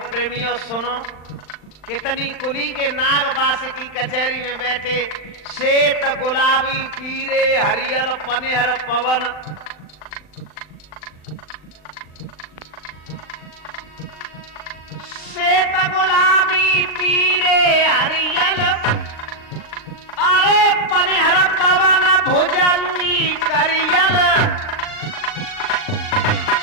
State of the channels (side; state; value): right; late; 39 ms